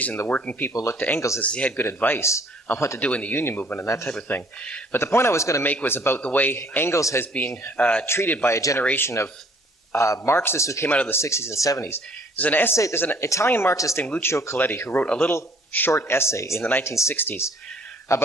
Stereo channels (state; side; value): normal; both; correlation 0.58